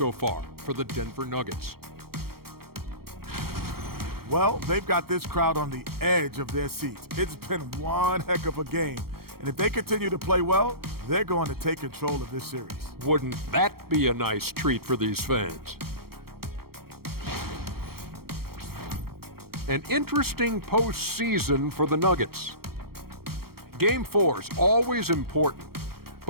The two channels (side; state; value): left; late; 0.94 ms